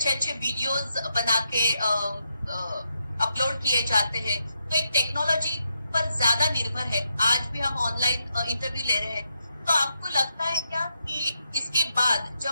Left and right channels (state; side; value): inverted; both; correlation -0.81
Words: अच्छे वीडियोस बना के अपलोड किए जाते हैं, तो एक टेक्नोलॉजी पर ज्यादा निर्भर है। आज भी हम ऑनलाइन इंटरव्यू ले रहे हैं, तो आपको लगता है क्या कि इसके बाद